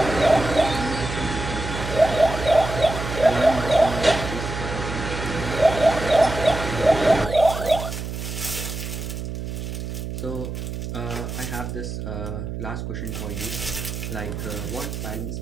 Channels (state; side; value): noise; right; hum, 6 dB below the sound